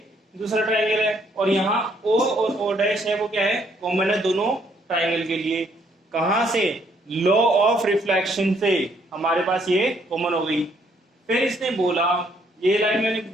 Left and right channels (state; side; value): normal; both; correlation 0.68